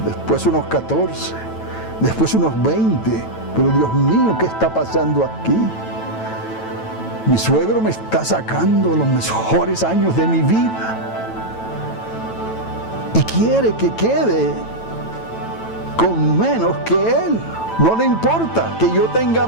después unos 14, después unos 20. Pero Dios mío, ¿qué está pasando aquí? Mi suegro me está sacando los mejores años de mi vida y quiere que quede con menos que él. No le importa que yo tenga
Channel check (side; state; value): right; late; 9.0 ms